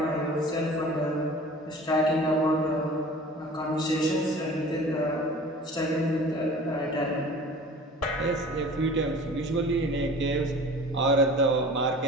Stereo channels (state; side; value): normal; both; correlation 0.42